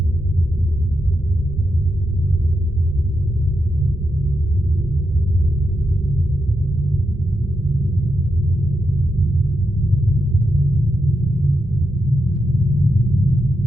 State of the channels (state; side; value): normal; both; correlation 0.85